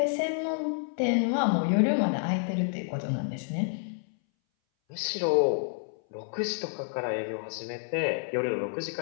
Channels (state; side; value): silent; right; 58 dB below the other